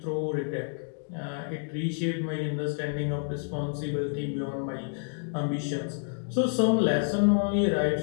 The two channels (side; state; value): right; silent; digital silence